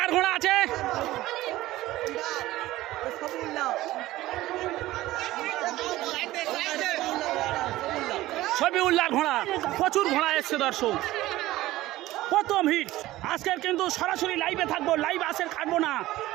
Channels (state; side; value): quieter; left; 16.6 dB